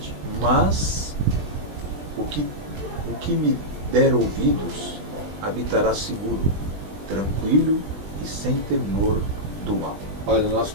mas o que me der ouvidos habitará seguro, tranquilo e sem temor do mal. Olha, nós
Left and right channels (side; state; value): left; late; 20 ms